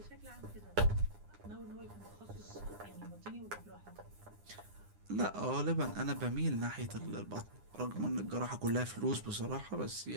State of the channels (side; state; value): left; late; 9.8 ms